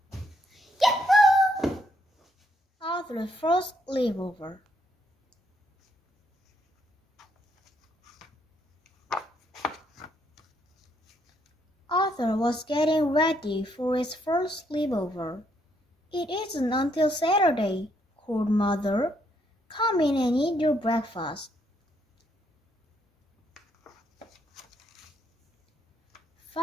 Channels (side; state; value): both; normal; correlation 0.73